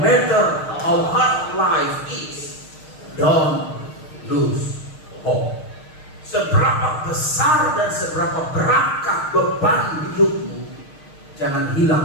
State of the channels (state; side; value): late; right; 6.5 ms